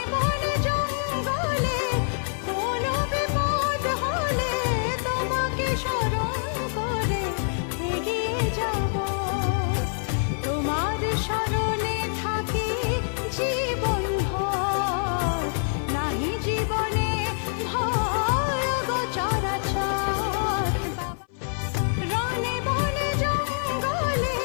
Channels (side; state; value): right; silent; 57 dB below the other